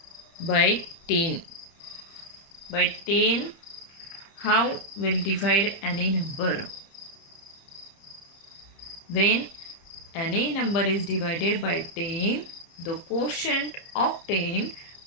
by 10. By 10, how will divide any number? When any number is divided by 10, the quotient obtained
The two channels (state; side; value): late; right; 30 ms